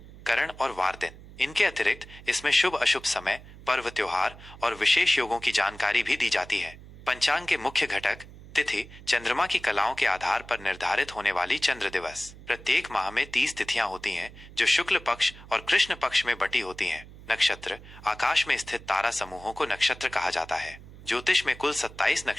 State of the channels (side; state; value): right; noise; hum, 18 dB below the sound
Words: करण और वार दिन। इनके अतिरिक्त इसमें शुभ अशुभ समय, पर्व त्योहार और विशेष योगों की जानकारी भी दी जाती है। पंचांग के मुख्य घटक: तिथि चंद्रमा की कलाओं के आधार पर निर्धारित होने वाली चंद्र दिवस। प्रत्येक माह में 30 तिथियां होती हैं, जो शुक्ल पक्ष और कृष्ण पक्ष में बटी होती हैं। नक्षत्र आकाश में स्थित तारा समूहों को नक्षत्र कहा जाता है। ज्योतिष में कुल 27